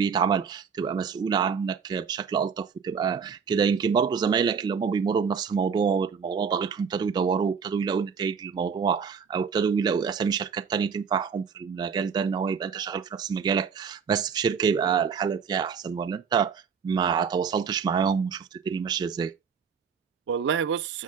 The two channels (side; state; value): left; quieter; 6.3 dB